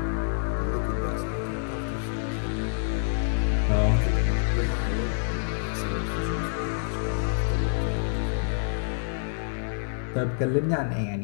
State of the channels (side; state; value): right; silent; 56 dB below the other